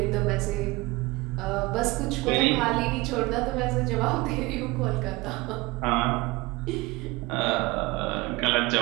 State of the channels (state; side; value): quieter; left; 22.0 dB